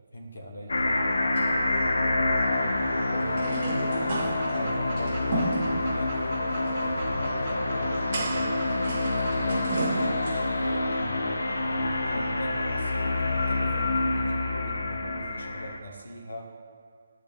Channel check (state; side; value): inverted; both; correlation -0.88